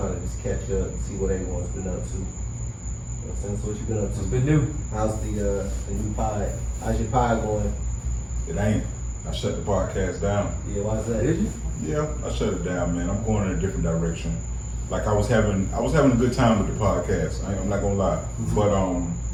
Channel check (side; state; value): both; identical; correlation 1.00